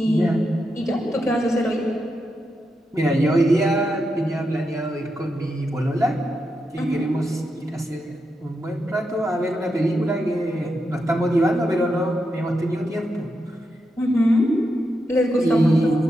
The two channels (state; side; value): normal; both; correlation 0.85